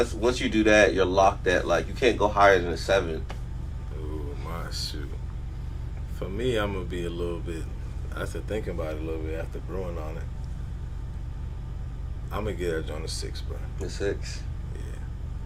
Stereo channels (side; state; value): both; identical; correlation 1.00